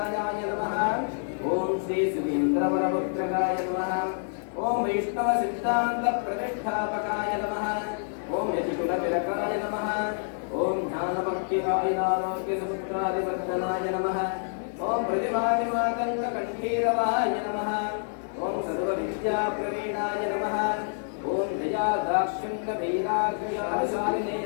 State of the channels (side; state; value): right; silent; digital silence